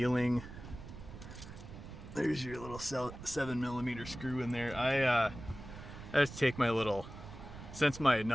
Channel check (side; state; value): right; noise; rumble, 13 dB below the sound